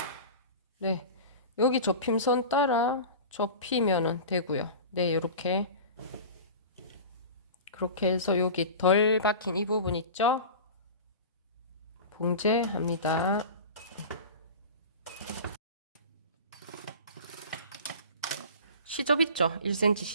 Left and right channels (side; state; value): both; inverted; correlation -0.34